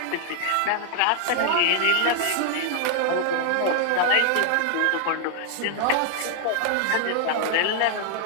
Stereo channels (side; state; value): both; different; correlation 0.00